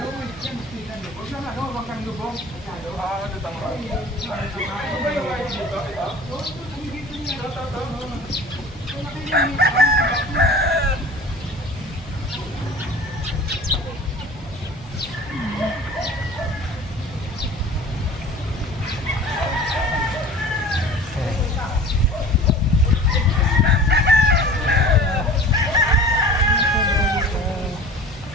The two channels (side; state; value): both; normal; correlation 0.41